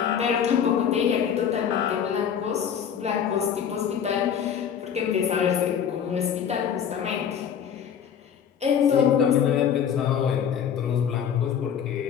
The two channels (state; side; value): quieter; right; 8.2 dB